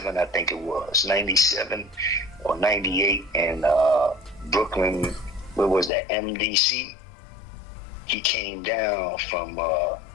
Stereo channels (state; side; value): drops out; right; at 5.9 s